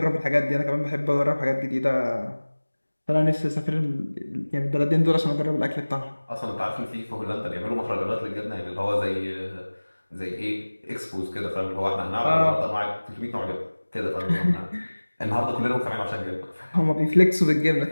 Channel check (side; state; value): both; inverted; correlation -1.00